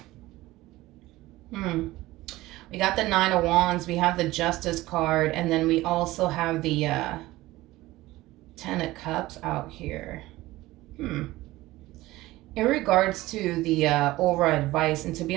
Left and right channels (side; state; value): left; quieter; 17.9 dB